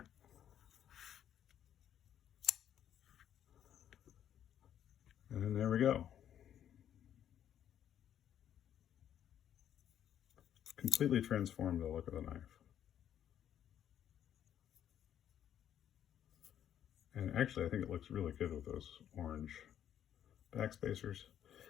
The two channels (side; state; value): right; quieter; 10.1 dB